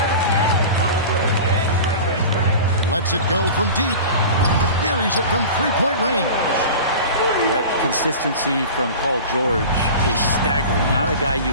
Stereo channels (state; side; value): inverted; both; correlation -0.35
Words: Lets it go from deep. Buries it from three-point range. That consistency from Paul George is staggering. Not a guy you